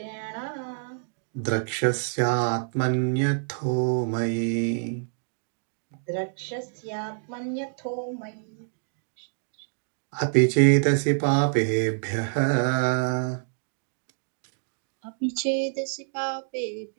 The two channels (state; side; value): silent; left; digital silence